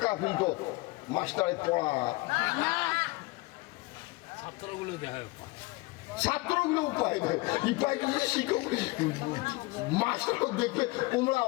ফিলতো মাস্টারের পড়া, ছাত্রগুলো উপায় দেয়, শিক্ষক মাস্টার দেখবে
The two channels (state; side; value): quieter; right; 23.2 dB